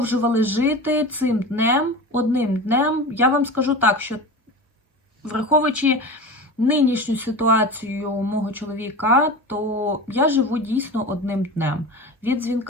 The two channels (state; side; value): normal; both; correlation 0.30